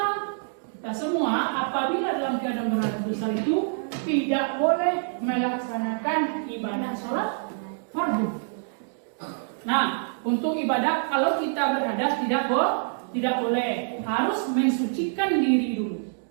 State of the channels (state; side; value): silent; left; digital silence